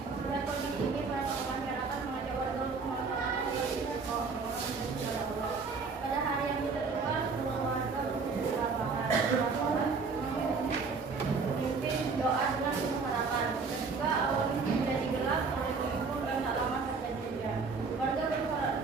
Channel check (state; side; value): quieter; left; 4.7 dB